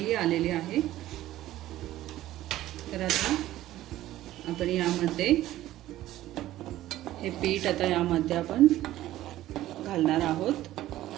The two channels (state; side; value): quieter; left; 14.6 dB